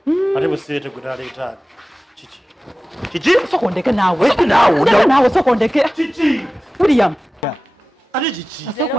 ate busiete gutaleeta kiki sokondeke naawe sokondeke kiki William ate kiki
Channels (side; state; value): both; normal; correlation 0.96